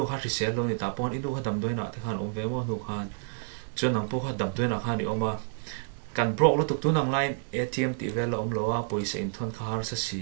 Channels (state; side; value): silent; left; 58 dB below the other